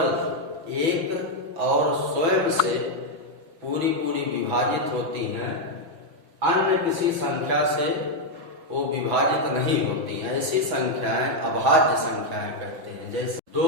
एक और स्वयं से पूरी विभाजित होती हैं, अन्य किसी संख्या से वो विभाजित नहीं होती हैं। ऐसी संख्याएं अभाज्य संख्याएं कहते हैं। जैसे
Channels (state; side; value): late; left; 5.9 ms